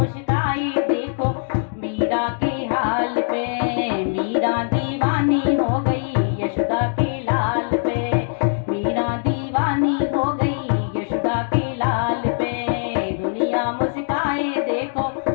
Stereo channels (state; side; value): silent; right; digital silence